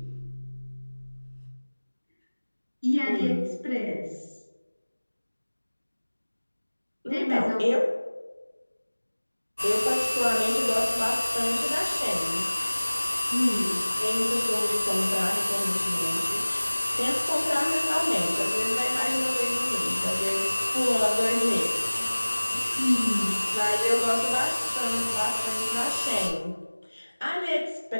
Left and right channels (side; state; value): both; inverted; correlation -1.00